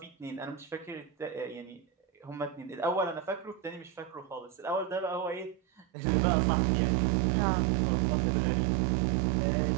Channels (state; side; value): drops out; left; at 5.9 s